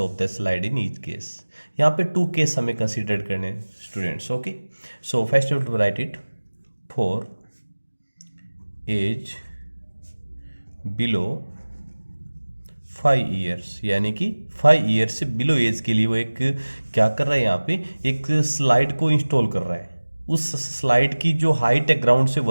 the slide in each case? यहाँ पे two case हमें consider करने students. Okay, so first you to write it. For age below 5 years, यानी कि 5 years से below as के लिए वो एक क्या कर रहा है, यहाँ पे एक स्लाइड को इंस्टॉल कर रहा है. उस स्लाइड की जो हाइट है ग्राउंड से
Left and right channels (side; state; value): both; inverted; correlation -1.00